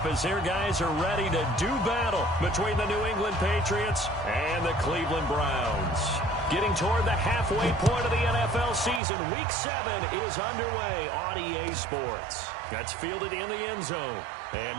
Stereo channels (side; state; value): left; drops out; at 9.0 s